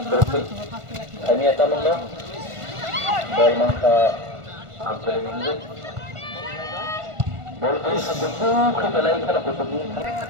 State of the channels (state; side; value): late; left; 1.5 ms